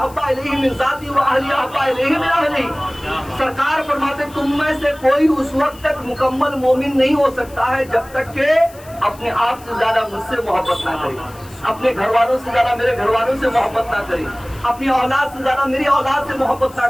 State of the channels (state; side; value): noise; left; hiss, 23 dB below the sound